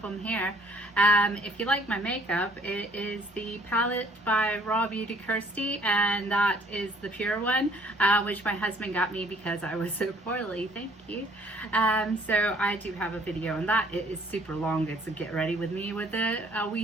them here. If you like my makeup, it is the palette by Raw Beauty Kirsty, and that is the pure one, which my husband got me because I was so poorly. Thank you. So I do have a video on that. It is super long. It's a get ready with me with a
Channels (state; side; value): normal; both; correlation 0.60